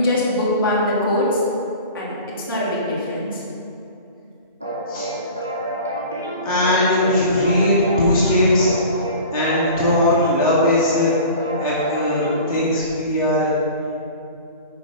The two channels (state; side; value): inverted; both; correlation -0.39